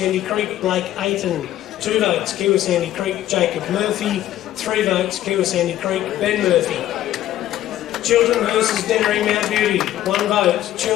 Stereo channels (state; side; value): quieter; right; 13.2 dB